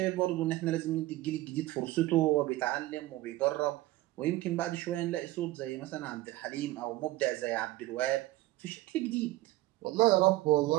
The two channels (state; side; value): quieter; left; 17.5 dB